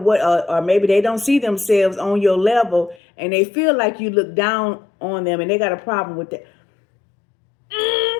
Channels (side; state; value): right; drops out; at 3.0 s